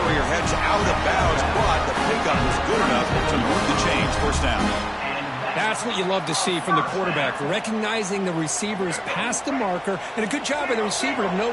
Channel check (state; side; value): identical; both; correlation 1.00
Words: heads out of bounds, but the pickup was good enough to move the chains. First down. That's what you love to see from the quarterback, recognizing the receiver's past the marker, and a good job by the receiver to know